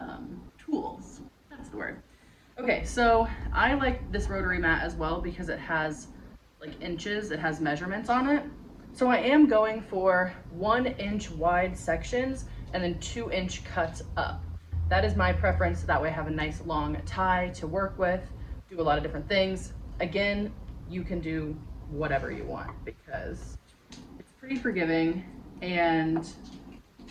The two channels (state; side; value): identical; both; correlation 1.00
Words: tools. That's the word. Okay, so I like this rotary mat as well because it has like inches, it has measurements on it. So I am going for 1 inch wide sections and then 2 inch cuts up. That is my preference. That way I have a nice long tie to work with, do a lot of different things. Again, you can do whatever you want because it's pretty forgiving, and